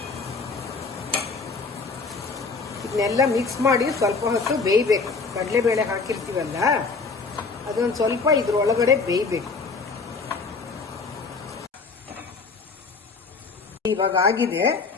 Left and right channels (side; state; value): right; quieter; 4.4 dB